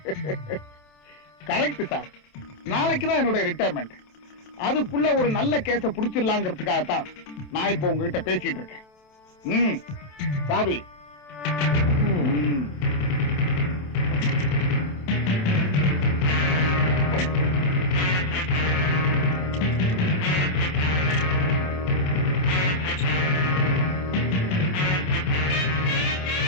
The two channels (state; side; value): late; right; 27 ms